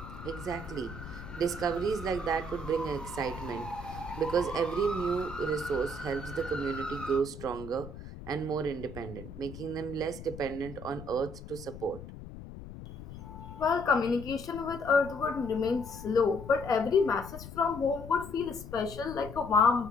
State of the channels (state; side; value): noise; left; rumble, 12 dB below the sound